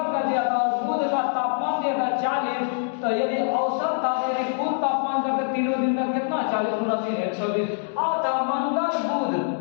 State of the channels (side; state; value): right; silent; digital silence